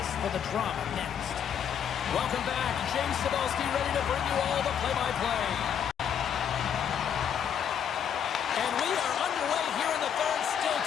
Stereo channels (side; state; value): right; quieter; 8.4 dB